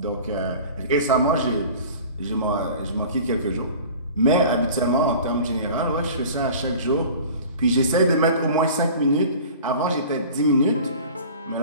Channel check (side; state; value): both; inverted; correlation -0.41